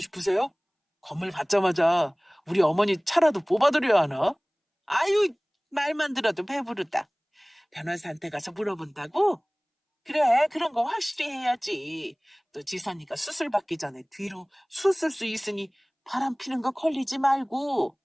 건물 받자마자 우리 어머니 차라도 뽑아드려야 하나? 아유, 말만 들어도 배부르다. 변호사한테 가서 물어본다고? 그래, 그런 거 확실히 해야지. 또 지선이가 수술 받기 전에 뒤로 수술 수 있으니 바람 피는 거 걸리지 말고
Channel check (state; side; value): identical; both; correlation 1.00